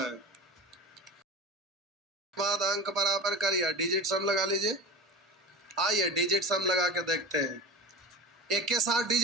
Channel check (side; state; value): both; normal; correlation 0.31